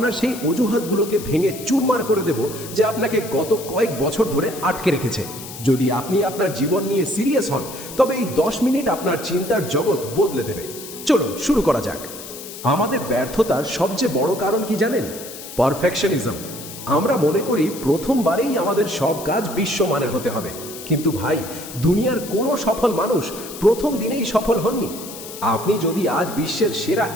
সেই অজুহাতগুলোকে ভেঙে চুরমার করে দেব যে আপনাকে গত কয়েক বছর ধরে আটকে রেখেছে। যদি আপনি আপনার জীবন নিয়ে সিরিয়াস হন তবে এই 10 মিনিট আপনার চিন্তার জগৎ বদলে দেবে। চলুন শুরু করা যাক। আমাদের ব্যর্থতার সবচেয়ে বড় কারণ কি জানেন? পারফেকশনিজম। আমরা মনে করি প্রথমবারেই আমাদের সব কাজ বিশ্বমানের হতে হবে। কিন্তু ভাই, দুনিয়ার কোনো সফল মানুষ প্রথম দিনেই সফল হননি। আপনি যদি আজ বিশ্বের সেরা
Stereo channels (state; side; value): noise; left; hiss, 12 dB below the sound